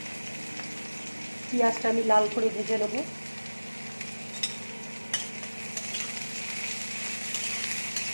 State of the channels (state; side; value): inverted; both; correlation -1.00